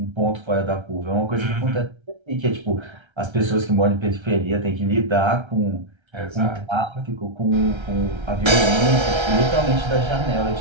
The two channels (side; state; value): left; late; 1.3 ms